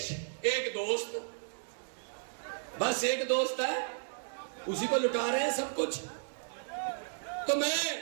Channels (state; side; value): silent; left; digital silence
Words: एक दोस्त, बस एक दोस्त है, उसी को लुटा रहे हैं सब कुछ। तो मैं